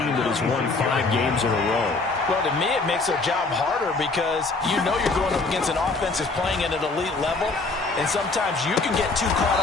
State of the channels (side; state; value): right; quieter; 3.7 dB